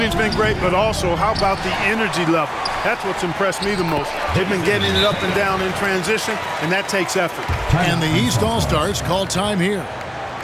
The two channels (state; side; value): identical; both; correlation 1.00